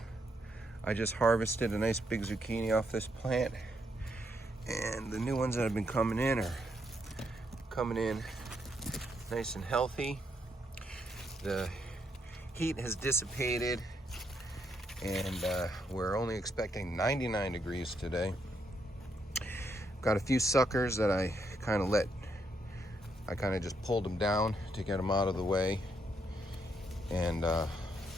I just harvested a nice big zucchini off this plant, and the new ones that have been coming in are coming in nice and healthy. The heat has dissipated, and we're only expecting 99 degrees today. Got a few suckers that I kind of just pulled them down to get them out of the way, and a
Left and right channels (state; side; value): normal; both; correlation 0.76